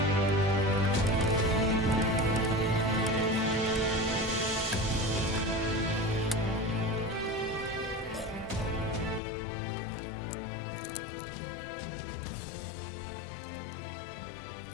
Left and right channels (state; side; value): drops out; right; at 9.2 s